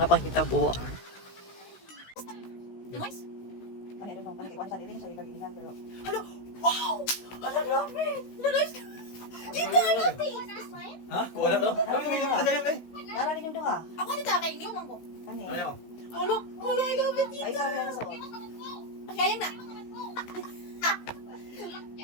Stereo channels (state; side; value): late; right; 16 ms